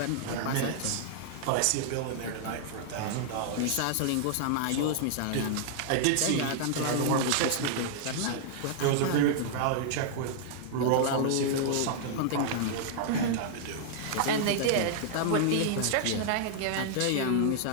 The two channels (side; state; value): both; different; correlation -0.01